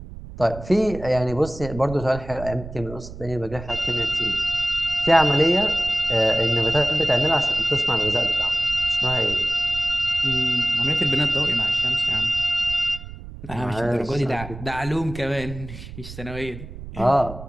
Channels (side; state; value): right; noise; rumble, 13 dB below the sound